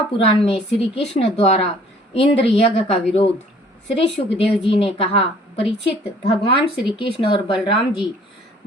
में श्री कृष्ण द्वारा इंद्र यज्ञ का विरोध। श्री सुखदेव जी ने कहा, परीक्षित, भगवान श्री कृष्ण और बलराम जी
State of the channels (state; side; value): normal; both; correlation 0.56